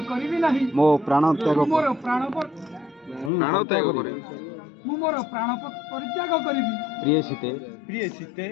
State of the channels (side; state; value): right; drops out; at 3.3 s